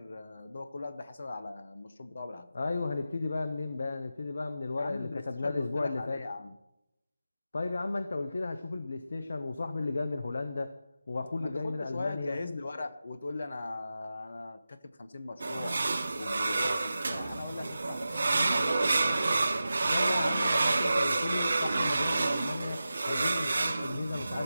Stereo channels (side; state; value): both; inverted; correlation -0.92